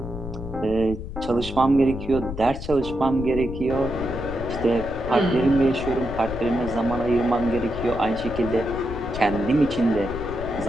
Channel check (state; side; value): noise; left; rumble, 9 dB below the sound